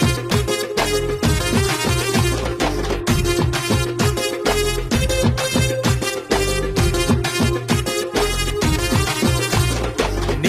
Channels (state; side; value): identical; both; correlation 1.00